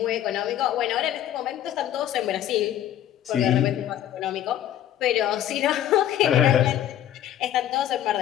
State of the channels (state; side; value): quieter; right; 11.6 dB